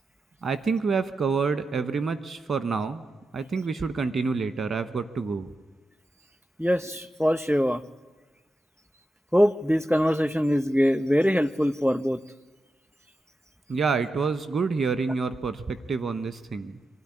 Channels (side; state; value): both; normal; correlation 0.90